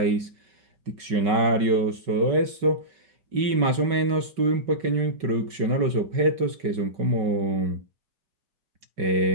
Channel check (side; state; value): left; late; 5.2 ms